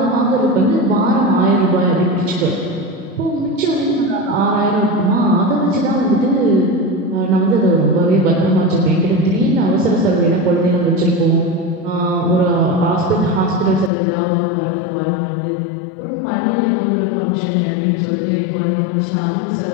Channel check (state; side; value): drops out; right; at 13.9 s